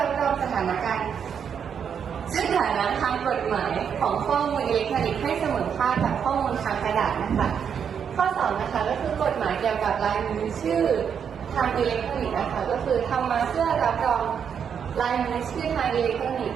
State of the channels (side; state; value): left; quieter; 7.5 dB